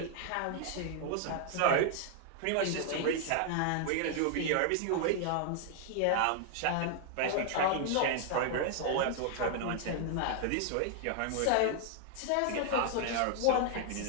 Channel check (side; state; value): both; different; correlation 0.00